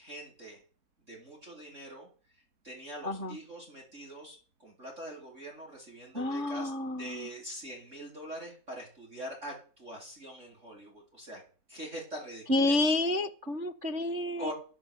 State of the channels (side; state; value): left; late; 3.7 ms